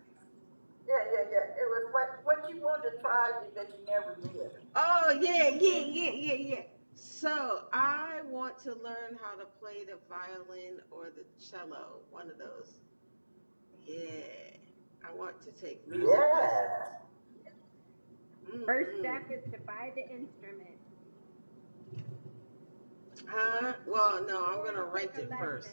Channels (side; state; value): both; inverted; correlation -1.00